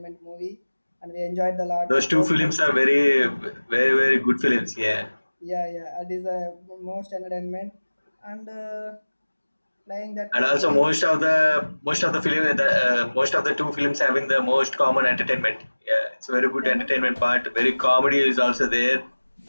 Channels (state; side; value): inverted; both; correlation -1.00